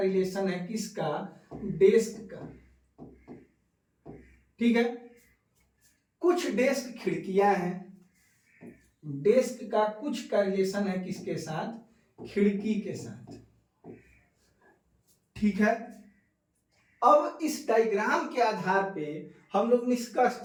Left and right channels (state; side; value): identical; both; correlation 1.00